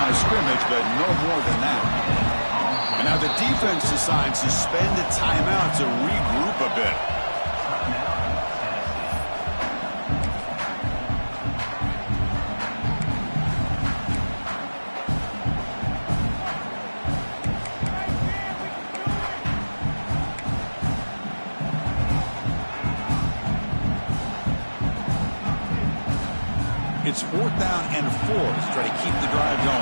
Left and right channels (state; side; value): inverted; both; correlation -1.00